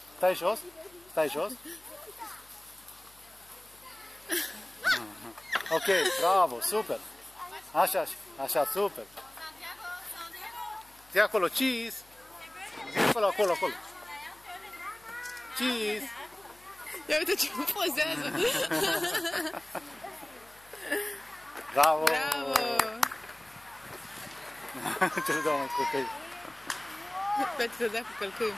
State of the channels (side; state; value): left; noise; hum, 28 dB below the sound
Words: Stai jos. Stai jos. Ok, bravo, super. Așa, super. Zi acolo, cheese. Zi acolo. Cheese. Ia uite ce pozează. Bravo. Bravo. Ce se dă mai copii? Pentru că dea cu călcâiul.